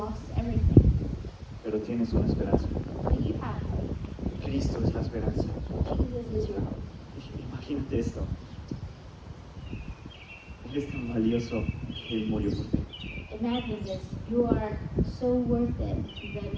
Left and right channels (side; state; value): both; identical; correlation 1.00